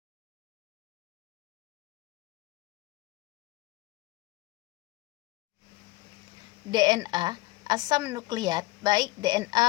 DNA, asam nukleat, baik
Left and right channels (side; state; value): right; quieter; 20.9 dB